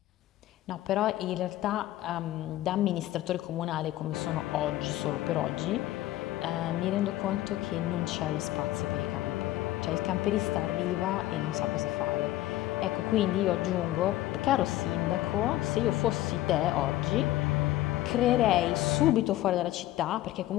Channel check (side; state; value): right; quieter; 15.2 dB